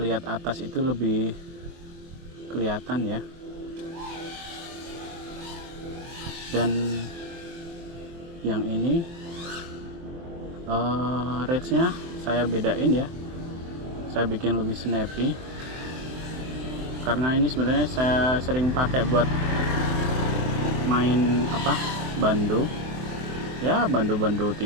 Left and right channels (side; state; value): left; late; 23 ms